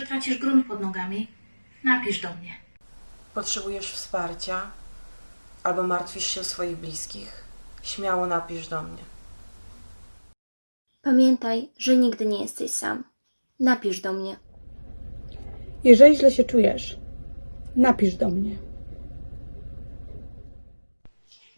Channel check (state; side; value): inverted; both; correlation -1.00